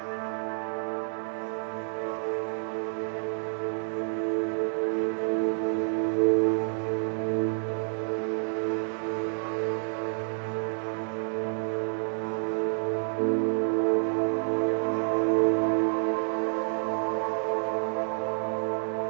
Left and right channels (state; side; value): silent; left; digital silence